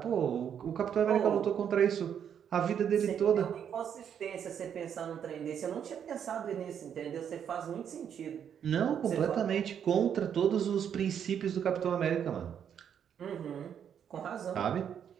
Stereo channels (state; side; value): quieter; left; 8.5 dB